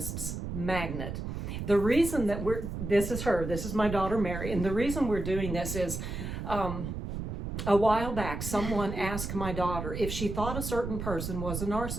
Magnet. The reason that this is my daughter, Mary. And the reason we're doing this is a while back, someone asked my daughter if she thought a certain person was a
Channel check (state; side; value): noise; right; rumble, 5 dB below the sound